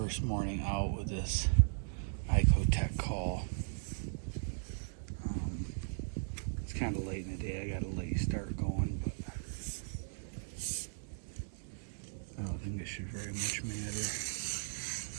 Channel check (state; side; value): silent; left; 53 dB below the other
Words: morning out with this ICOtec call. It's kind of late in the day. I got a late start going, but I don't think it should very much matter.